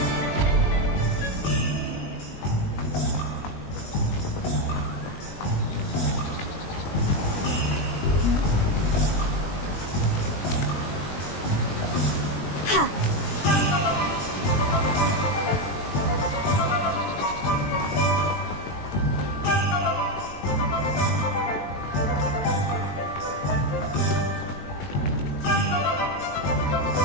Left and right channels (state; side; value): late; right; 21 ms